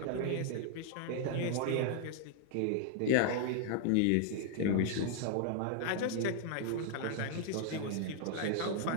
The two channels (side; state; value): both; different; correlation 0.00